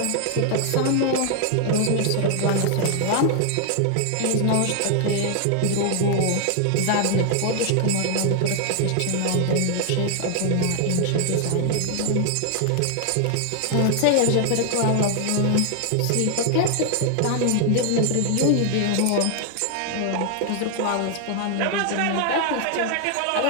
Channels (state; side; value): different; both; correlation 0.00